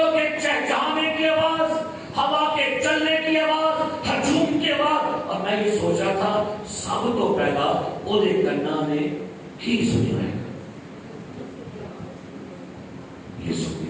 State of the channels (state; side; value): identical; both; correlation 1.00